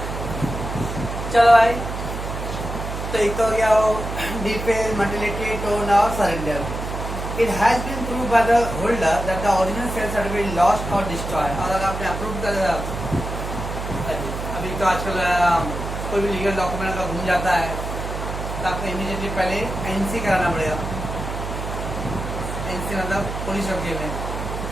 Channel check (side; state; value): right; noise; hum, 6 dB below the sound